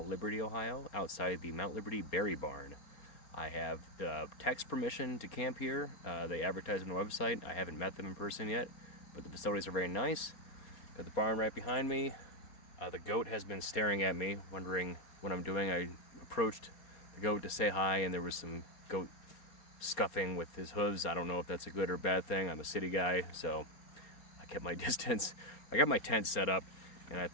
Liberty, Ohio, outside the Mount Liberty Berry Barn. I have text permission to camp here. They advertise on the website. I haven't met them in person yet, but the facilities are very nice. Got the barn right behind me. The goat has been staring at me, wondering what I'm doing. I approached the goat to say hi, and there was some goat scuffing with his hooves. I don't know if that's a good or bad thing. I'm a city guy, so I kept my distance. I got my tent set up, and I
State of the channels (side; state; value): right; late; 4.2 ms